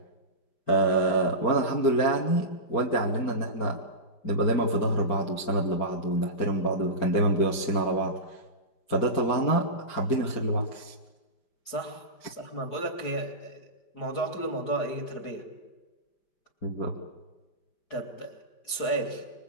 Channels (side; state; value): right; late; 5.0 ms